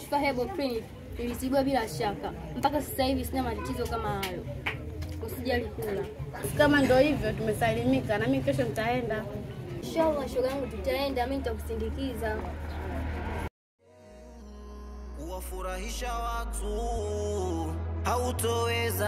Herbal Clinic nilisibua bila shaka. Mpaka sasa hivi sina matatizo kama hayo. Usijali kula. Kama ndio hivyo tumesalimika, na mimi kesho nitaenda. Inshallah shoga yangu, tutaenda, mimi nitakusindikiza. Kuwafurahisha watu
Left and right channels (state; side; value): identical; both; correlation 1.00